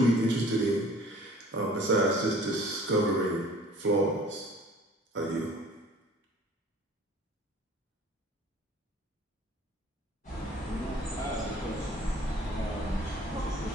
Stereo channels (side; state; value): both; normal; correlation 0.50